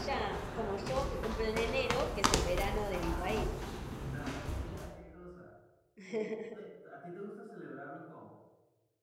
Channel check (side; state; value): both; identical; correlation 1.00